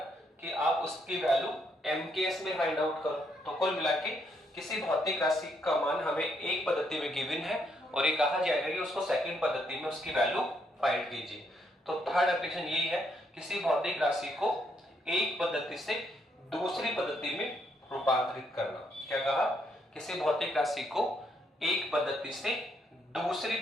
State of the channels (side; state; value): both; normal; correlation 0.75